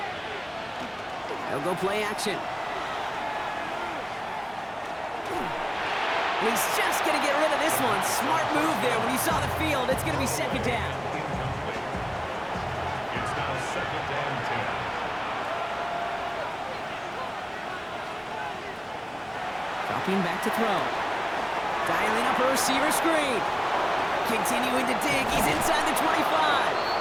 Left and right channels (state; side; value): identical; both; correlation 1.00